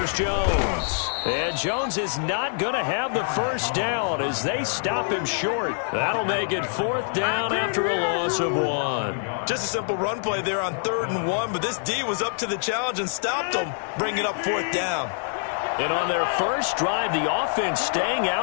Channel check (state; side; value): silent; right; digital silence